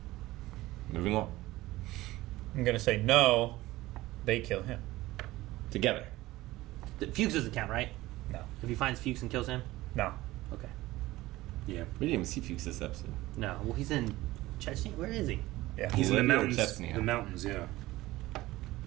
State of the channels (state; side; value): quieter; left; 17.9 dB